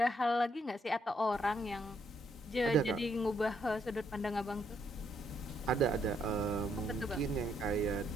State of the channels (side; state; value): both; normal; correlation 0.73